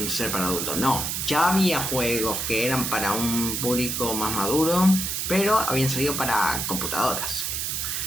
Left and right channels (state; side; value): noise; right; hiss, 1 dB below the sound